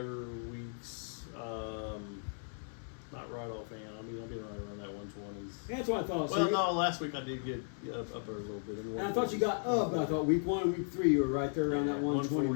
weeks. Not right offhand. I mean, I've been right around that 120s. Yeah, that's what I thought. Well, no, last week I did get up there a little bit. And I thought you got up. I thought week 1 and week 3 you were right there around that 120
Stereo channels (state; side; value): silent; right; digital silence